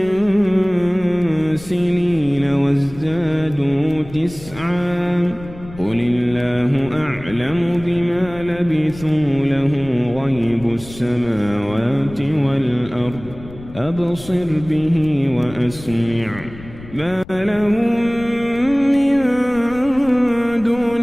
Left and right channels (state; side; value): noise; left; rumble, 17 dB below the sound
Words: سنين وازدادوا 9 قل الله أعلم بما لبثوا له غيب السماوات والأرض أبصر به وأسمع ما لهم من